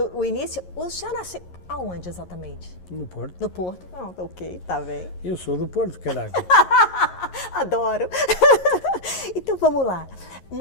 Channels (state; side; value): late; right; 11 ms